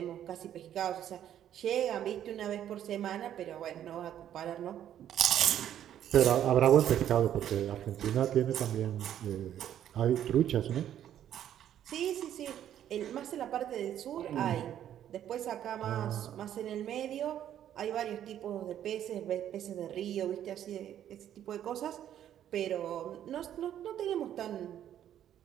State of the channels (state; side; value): quieter; left; 10.7 dB